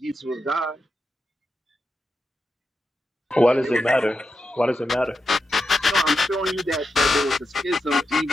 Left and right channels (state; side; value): normal; both; correlation 0.88